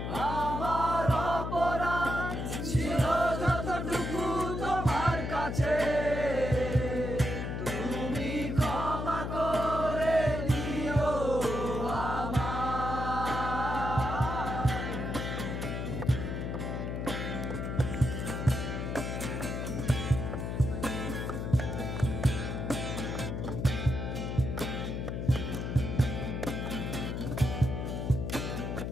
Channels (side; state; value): left; noise; hum, 3 dB below the sound